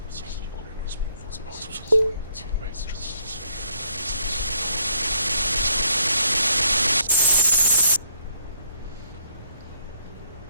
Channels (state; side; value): inverted; both; correlation -0.70